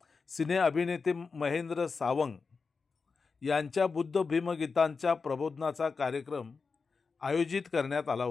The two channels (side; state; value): right; quieter; 4.8 dB